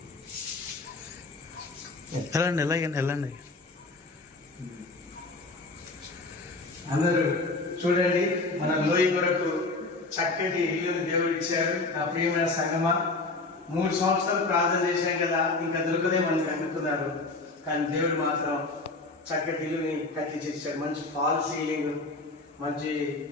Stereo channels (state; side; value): quieter; right; 3.4 dB